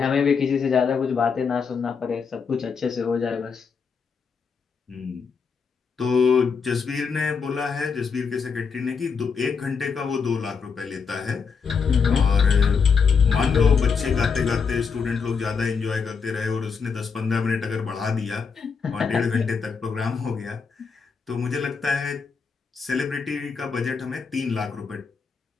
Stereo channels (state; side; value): quieter; right; 5.7 dB